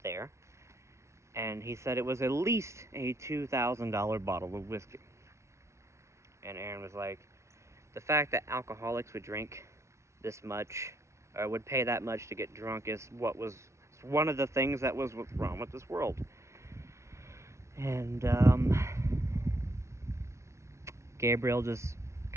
there, and he said it was at least a $2,000 bottle of whiskey. And Aaron was like, the fact that alcoholics would drink this much, or would pay that much to get drunk, is one of the things that was wrong with this world. And Gabriel just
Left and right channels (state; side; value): late; left; 0.13 ms